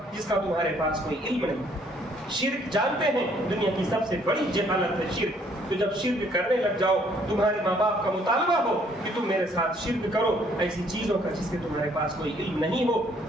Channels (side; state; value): both; normal; correlation 0.64